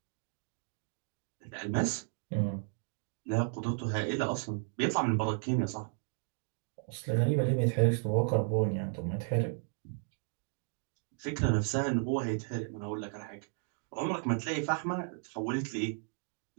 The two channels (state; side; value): silent; left; 55 dB below the other